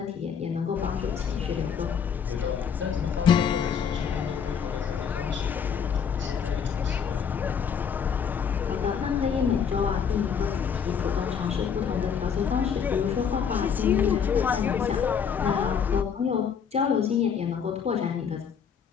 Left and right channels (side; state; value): right; quieter; 7.1 dB